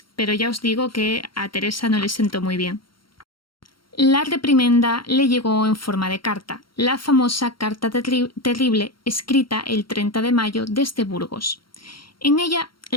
pero ya os digo que a Teresa no le sentó muy bien. La reprimenda le llegó en forma de carta, la famosa Carta Terrible, escrita el 30 de mayo desde Burgos. En ella,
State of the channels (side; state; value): right; late; 0.73 ms